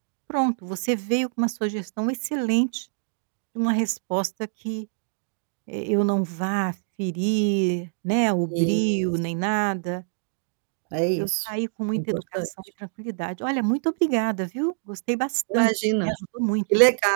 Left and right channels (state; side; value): silent; left; digital silence